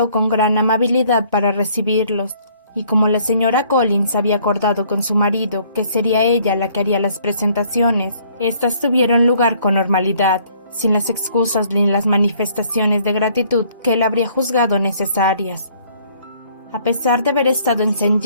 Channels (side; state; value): both; inverted; correlation -0.61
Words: con gran amabilidad para recibirlos, y como la señora Collins había acordado con su marido que sería ella la que haría las presentaciones, éstas tuvieron lugar con normalidad, sin las excusas ni las manifestaciones de gratitud que él habría juzgado necesarias. A pesar de haber estado en St.